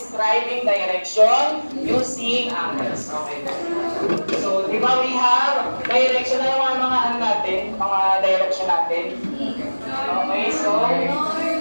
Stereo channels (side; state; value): both; inverted; correlation -1.00